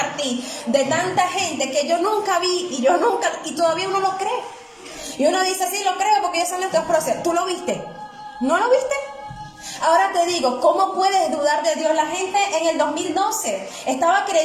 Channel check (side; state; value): both; identical; correlation 1.00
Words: de tanta gente que yo nunca vi y todavía uno lo cree. Y uno dice, sí, lo creo porque ellos son estos procesos. ¿Tú lo viste? ¿No lo viste? Ahora te digo, ¿cómo puedes dudar de Dios? La gente en el 2012 estaba